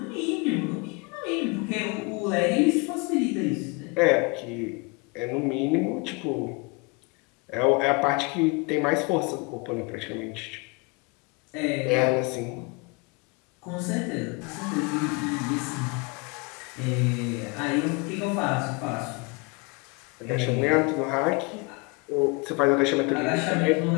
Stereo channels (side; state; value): right; quieter; 28.9 dB